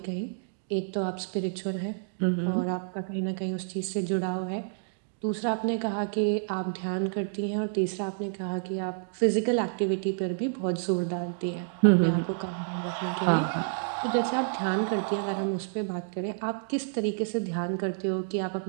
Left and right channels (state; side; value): silent; left; digital silence